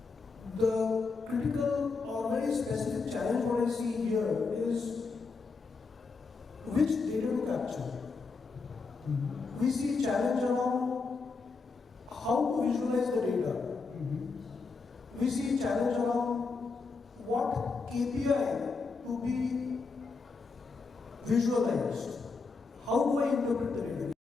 the critical or very specific challenge what I see here is which data to capture. We see challenge around how to visualize the data. We see challenge around what KPI to be visualized. How do I interpret the data?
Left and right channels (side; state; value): right; quieter; 4.5 dB